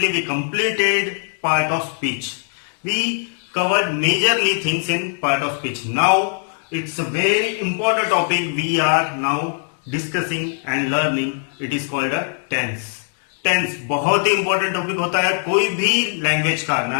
completed part of speech. We covered majorly things in part of speech. Now it's a very important topic we are now discussing and learning. It is called a tense. Tense बहुत ही important topic होता है कोई भी language का, ना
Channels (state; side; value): silent; right; 57 dB below the other